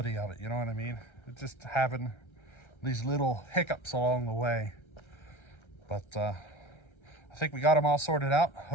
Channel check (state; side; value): late; right; 1.3 ms